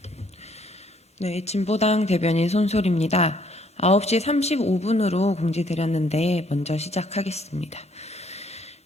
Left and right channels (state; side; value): normal; both; correlation 0.65